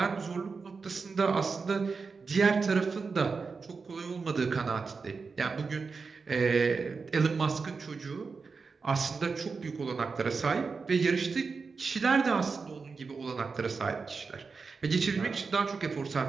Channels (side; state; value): left; quieter; 4.8 dB